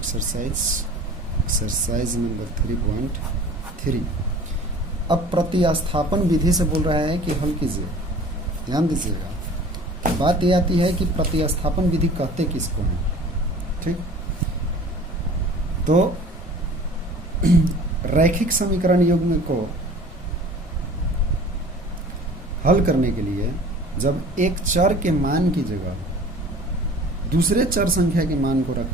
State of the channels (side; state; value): both; normal; correlation 0.45